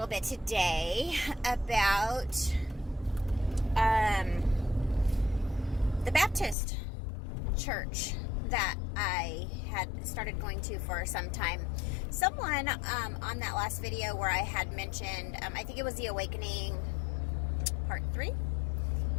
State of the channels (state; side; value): drops out; right; at 6.6 s